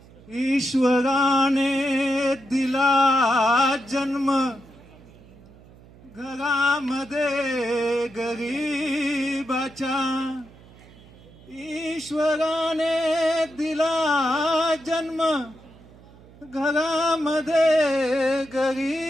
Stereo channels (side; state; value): right; noise; hum, 23 dB below the sound